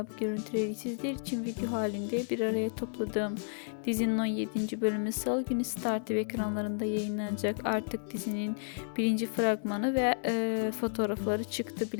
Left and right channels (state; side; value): silent; right; digital silence